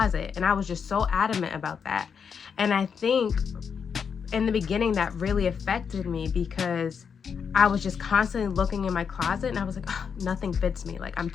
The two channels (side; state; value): right; quieter; 6.6 dB